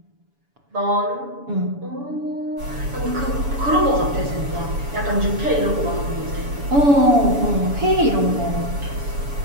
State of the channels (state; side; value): late; left; 7.0 ms